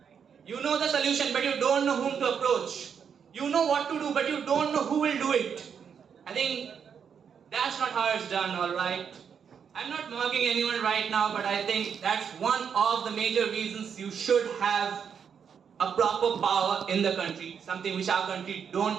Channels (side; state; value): left; quieter; 7.2 dB